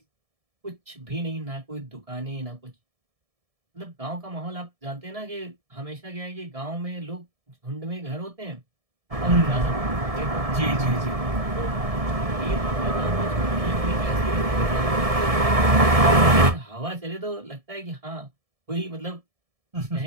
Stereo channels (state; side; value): late; left; 1.7 ms